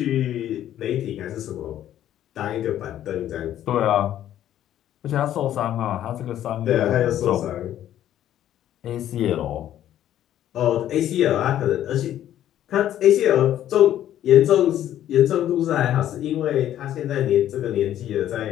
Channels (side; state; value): right; quieter; 11.7 dB